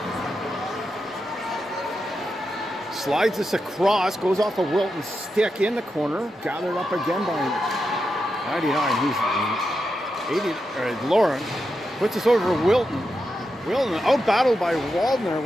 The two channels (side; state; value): both; normal; correlation 0.87